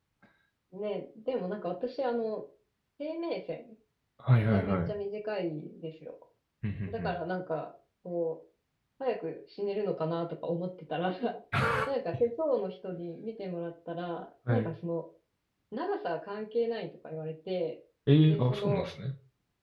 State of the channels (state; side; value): identical; both; correlation 1.00